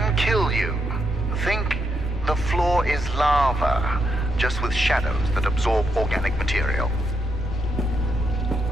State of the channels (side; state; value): both; normal; correlation 0.79